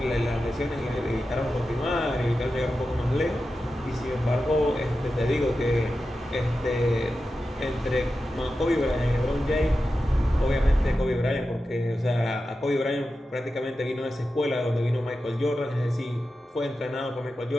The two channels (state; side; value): normal; both; correlation 0.92